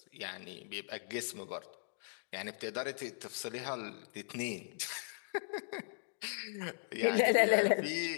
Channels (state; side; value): silent; right; digital silence